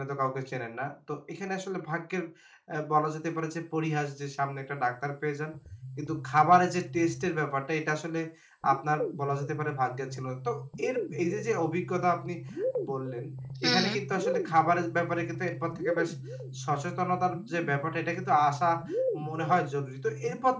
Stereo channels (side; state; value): both; identical; correlation 1.00